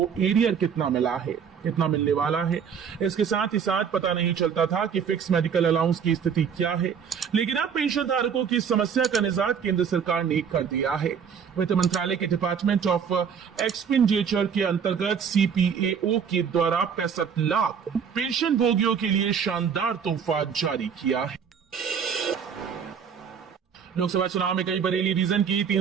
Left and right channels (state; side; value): quieter; left; 7.1 dB